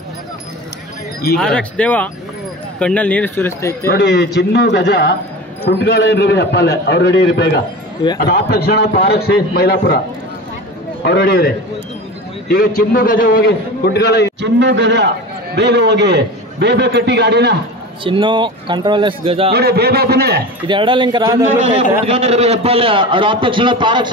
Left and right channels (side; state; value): both; normal; correlation 0.31